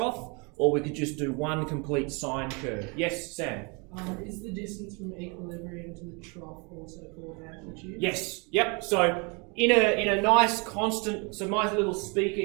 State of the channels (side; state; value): left; quieter; 31.6 dB